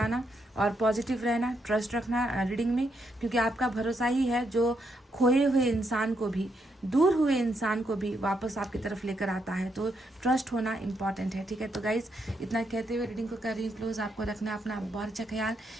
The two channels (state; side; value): normal; both; correlation 0.79